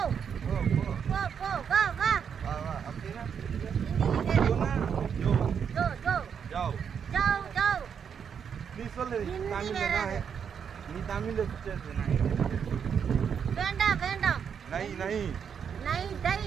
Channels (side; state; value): left; quieter; 7.3 dB